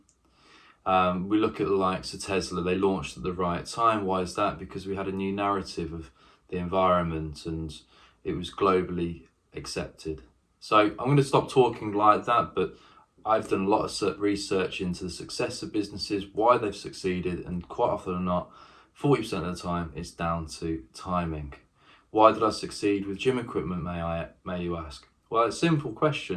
We look at the likes of Tesla. They launched at the right time. Why is that? Because we had a new narrative of the environment and it was globally accepted. So I'm going to stop talking like that, but I've done a lot of research into the success of businesses, why they've succeeded, and quite often or not, 40% of the time, it's down to timing. Why did I succeed with gym equipment, may you ask? Well, it's a simple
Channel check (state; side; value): identical; both; correlation 1.00